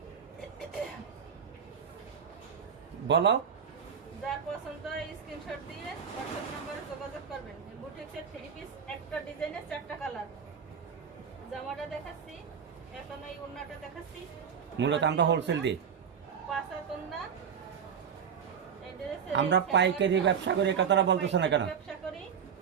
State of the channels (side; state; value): left; quieter; 7.3 dB